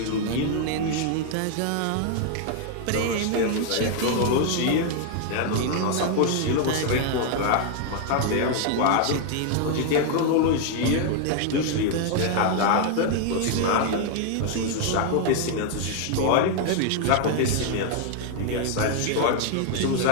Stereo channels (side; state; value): both; different; correlation 0.00